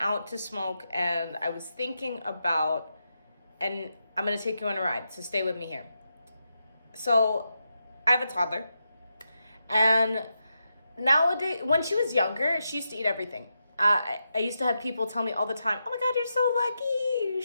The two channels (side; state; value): both; inverted; correlation -0.86